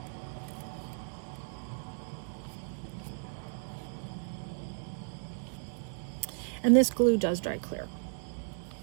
And this glue does dry clear.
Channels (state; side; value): silent; left; digital silence